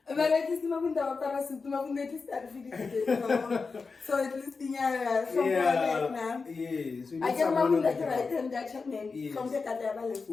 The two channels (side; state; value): right; quieter; 4.6 dB